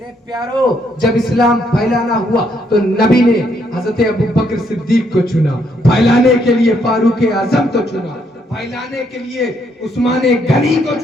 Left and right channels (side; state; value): both; normal; correlation 0.73